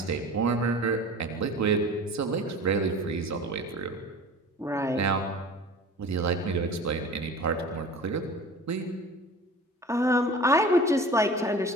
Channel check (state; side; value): normal; both; correlation 0.39